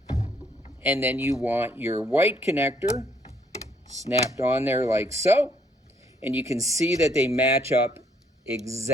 And then you want your white connector snapped on there like so. And you can see that they match up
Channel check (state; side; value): normal; both; correlation 0.68